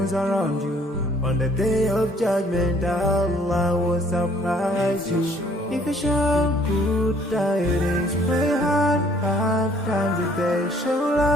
around you. On the day of judgment, Allah will surprise you. If you show good tidings, pray hard 5 times a day. Show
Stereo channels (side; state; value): both; normal; correlation 0.60